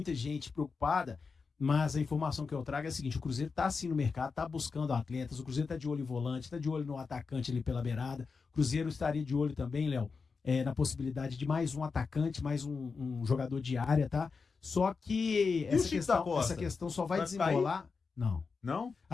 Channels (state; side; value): quieter; right; 4.9 dB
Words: gente preocupada, mas a informação que eu trago é a seguinte: o Cruzeiro está sim no mercado, está buscando atletas, o Cruzeiro está de olho em volante, está de olho no atacante ali pela beirada. O Cruzeiro estaria de olho também, Léo, na possibilidade de mais um atacante, mais um jogador de área, tá? Só que essa questão só vai desenrolar... Não. Não?